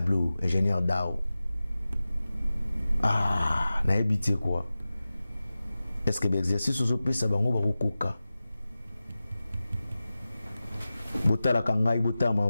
ingénieur Dao. Na habité quoi? Est-ce que l'exercice aux opés ça va koka? Botala kangai botala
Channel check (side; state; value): both; inverted; correlation -0.95